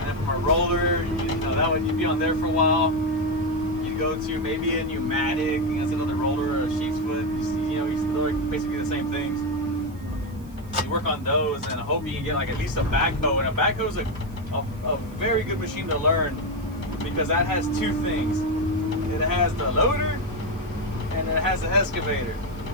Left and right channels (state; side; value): noise; right; hiss, 27 dB below the sound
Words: from a roller, you'd be on there for a while. You'd go to maybe a pneumatic, that's another roller, or a sheep's foot. They're basically the same things. You work on those, and I hope you can get at least a backhoe. And a backhoe is a very good machine to learn because that has 2 things. It has the loader and it has the excavator.